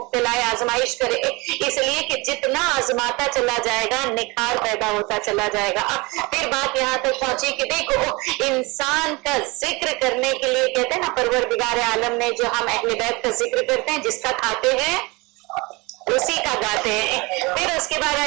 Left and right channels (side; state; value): left; quieter; 25.1 dB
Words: آزمائش کرے. اس لیے کہ جتنا آزماتا چلا جائے گا نکھار پیدا ہوتا چلا جائے گا. پھر بات یہاں تک پہنچی کہ دیکھو انسان کا ذکر کرنے کے لیے کہتے ہیں نا پروردگار عالم نے جو ہم اہل بیت کا ذکر کرتے ہیں جس کا کھاتے ہیں اسی کا گاتے ہیں. پھر اس کے بعد